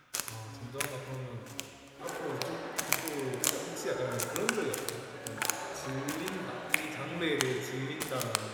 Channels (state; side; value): identical; both; correlation 1.00